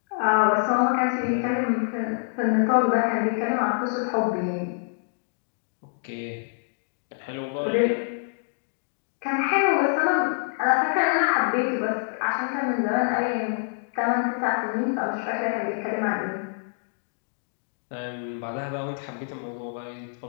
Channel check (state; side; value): silent; right; digital silence